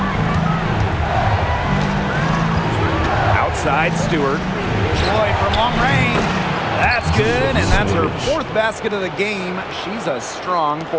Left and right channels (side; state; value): both; identical; correlation 1.00